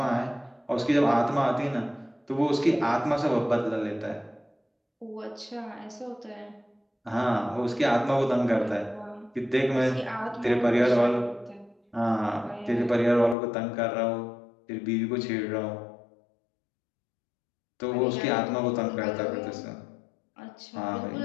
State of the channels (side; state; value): right; drops out; at 13.4 s